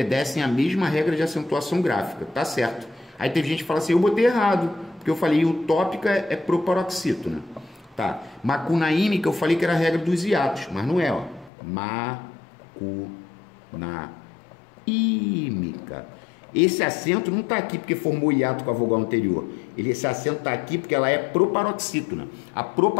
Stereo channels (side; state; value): right; drops out; at 11.5 s